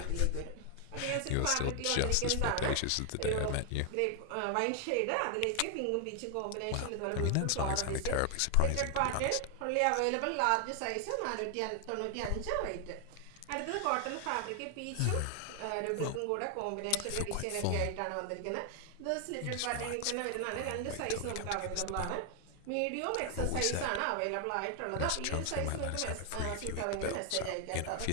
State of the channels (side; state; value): both; different; correlation 0.00